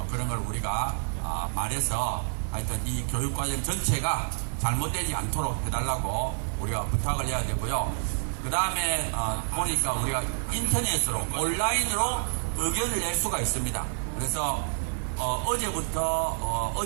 그런 걸 우리가 말해서 하여튼 이 교육과정 전체가 잘못되지 않도록 해달라고 우리가 부탁을 해야 되고요. 그 다음에 보니까 우리가 인터넷으로 온라인으로 의견을 낼 수가 있습니다. 그래서 어제부터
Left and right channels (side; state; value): left; silent; 57 dB below the other